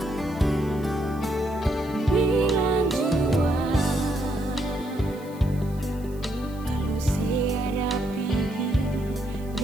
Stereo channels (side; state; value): right; noise; hiss, 24 dB below the sound